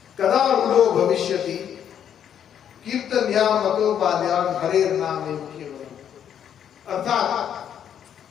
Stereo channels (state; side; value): quieter; right; 9.2 dB